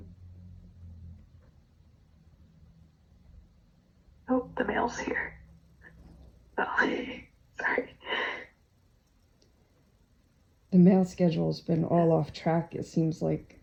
Yeah. Oh, the mail's here. Oh, sorry. The mail schedule's been all off track, it seems like,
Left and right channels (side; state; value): both; identical; correlation 1.00